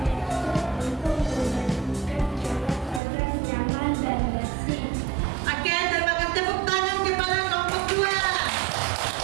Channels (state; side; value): drops out; left; at 3.0 s